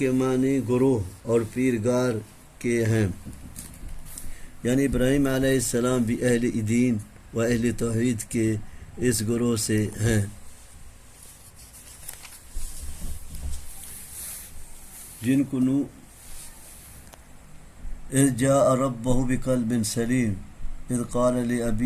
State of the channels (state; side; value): identical; both; correlation 1.00